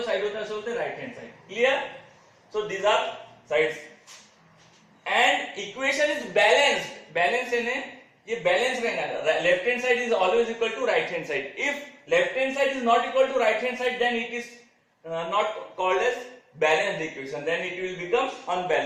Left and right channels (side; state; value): both; identical; correlation 1.00